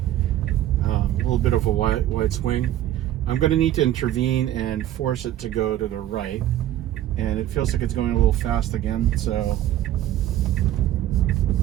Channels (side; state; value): left; quieter; 12.9 dB